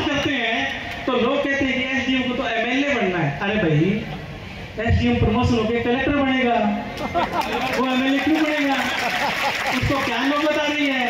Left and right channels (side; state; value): both; identical; correlation 1.00